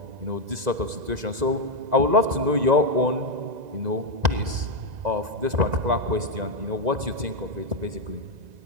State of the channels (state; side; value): late; left; 2.0 ms